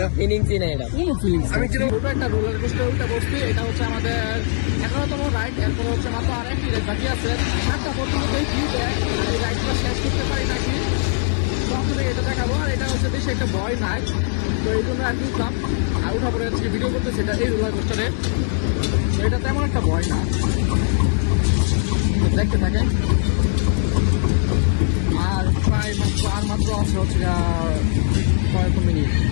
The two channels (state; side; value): silent; right; digital silence